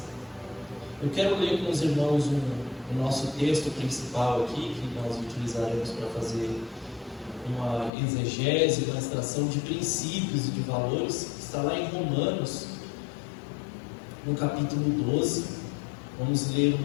Eu quero ler com os irmãos o nosso texto principal aqui, que nós utilizaremos para fazer uma exegese, uma extração de princípios e de valores, que está lá em Romanos, no capítulo 12, vamos ler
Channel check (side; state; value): right; drops out; at 7.9 s